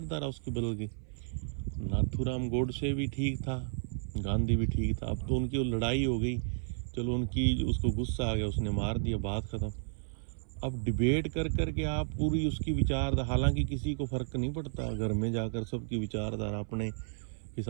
उसकी बदल गई? नाथूराम गोडसे भी ठीक था, गांधी भी ठीक था, अब तो उनकी लड़ाई हो गई, चलो उनकी, उसको गुस्सा आ गया, उसने मार दिया, बात ख़त्म। अब डिबेट कर कर के आप पूरी उसकी विचार, हालांकि किसी को फ़र्क नहीं पड़ता, घर में जाकर सबकी विचारधारा अपने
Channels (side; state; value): left; silent; 56 dB below the other